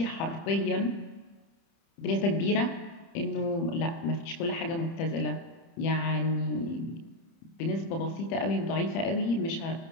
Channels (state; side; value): late; right; 30 ms